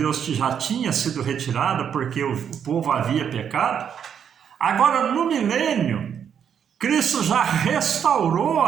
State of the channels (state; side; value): quieter; left; 8.1 dB